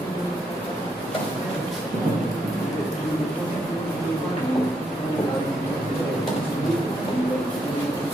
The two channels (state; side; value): normal; both; correlation 0.77